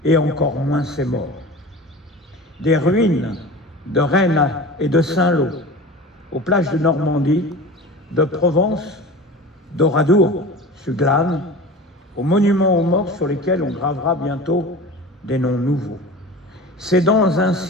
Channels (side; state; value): both; normal; correlation 0.35